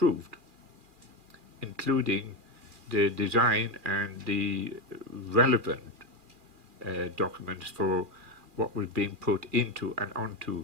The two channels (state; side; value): late; left; 2.4 ms